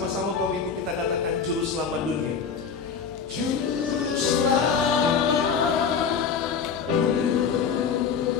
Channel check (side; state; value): right; quieter; 6.3 dB